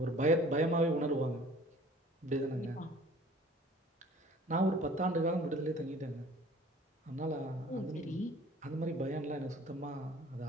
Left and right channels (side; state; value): both; normal; correlation 0.50